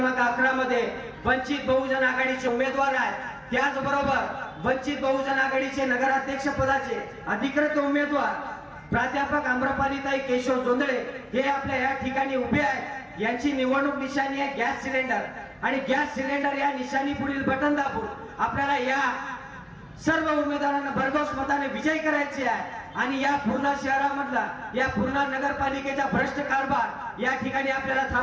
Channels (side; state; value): both; identical; correlation 1.00